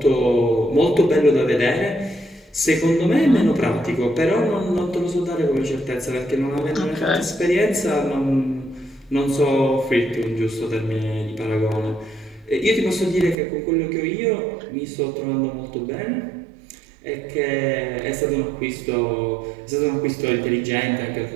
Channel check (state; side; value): drops out; left; at 13.4 s